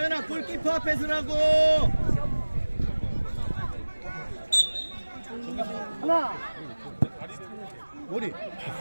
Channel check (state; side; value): inverted; both; correlation -1.00